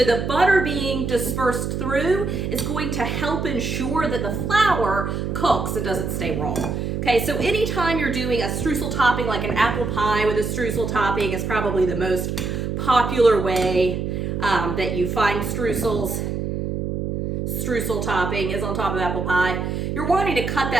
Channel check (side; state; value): right; noise; hum, 2 dB below the sound